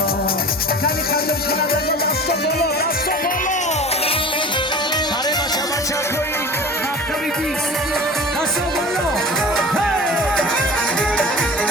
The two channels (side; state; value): both; normal; correlation 0.38